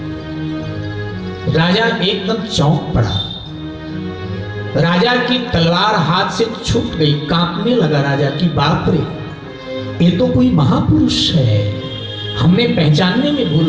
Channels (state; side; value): identical; both; correlation 1.00